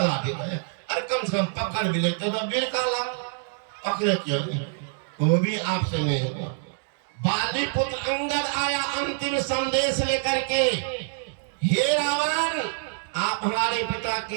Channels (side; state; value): left; silent; digital silence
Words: गया। अरे कम से कम पकड़ भी लेते तो वीर कहला, पकड़े क्यों नहीं, वो भी आपसे नहीं हुआ। बाली पुत्र अंगद आया अंतिम संदेश लेकर के, हे रावण आप हमारे पिता